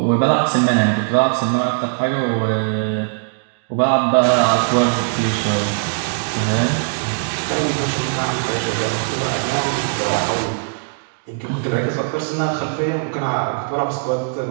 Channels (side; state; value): left; silent; digital silence